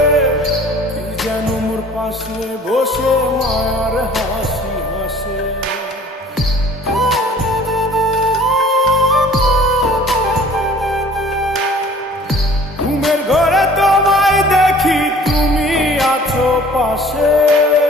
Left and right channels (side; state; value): both; normal; correlation 0.50